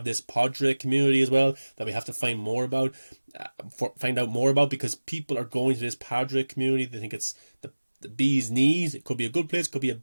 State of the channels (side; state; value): both; inverted; correlation -1.00